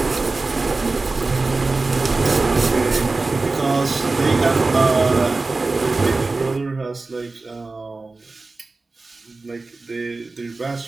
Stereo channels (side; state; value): left; quieter; 3.6 dB